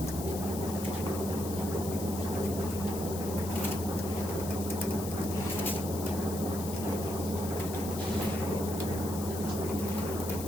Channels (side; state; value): left; noise; hiss, 9 dB below the sound